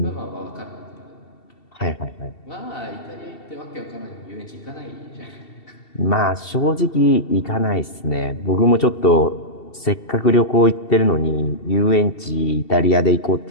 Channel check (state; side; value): late; right; 2.7 ms